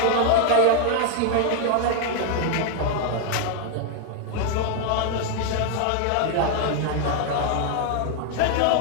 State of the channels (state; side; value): different; both; correlation 0.00